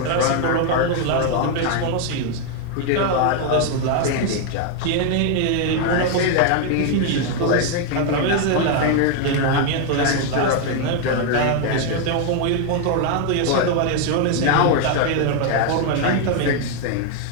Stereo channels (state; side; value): different; both; correlation 0.00